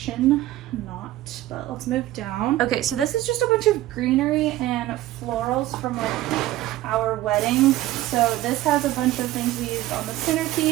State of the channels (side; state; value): left; quieter; 15.4 dB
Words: not, but let's move down. Okay, so this is just a bunch of greenery and florals from like our wedding. So this has a bunch of things we used on the